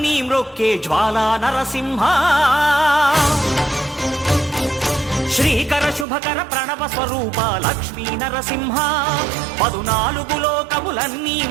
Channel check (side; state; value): left; drops out; at 6.1 s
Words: మ్రొక్కే జ్వాలా నరసింహ శ్రీకర శుభకర ప్రణవ స్వరూప లక్ష్మీ నరసింహ 14 లోకములన్నీ